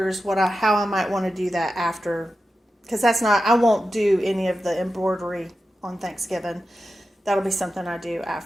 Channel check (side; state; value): both; normal; correlation 0.91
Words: how I might want to do that after, because I won't do any of the embroidery on Thanksgiving. That'll be something I do